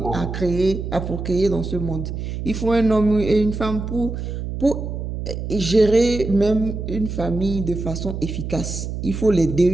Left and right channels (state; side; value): noise; right; hum, 5 dB below the sound